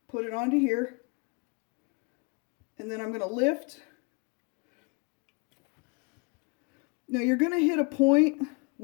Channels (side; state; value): right; quieter; 32.2 dB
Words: put it onto here. And then I'm going to lift. Now you're going to hit a point